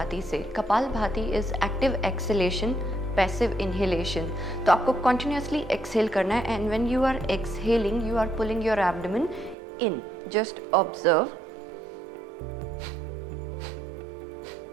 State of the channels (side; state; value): left; drops out; at 9.6 s